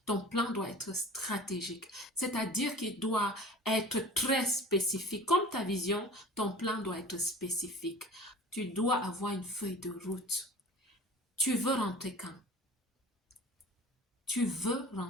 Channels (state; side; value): normal; both; correlation 0.42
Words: Ton plan doit être stratégique. C'est-à-dire qu'il doit être très spécifique. Comme ta vision, ton plan doit être spécifique. Tu dois avoir une feuille de route. Tu veux rentrer quand? Tu